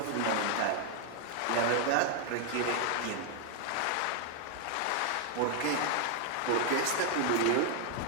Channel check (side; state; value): both; different; correlation 0.00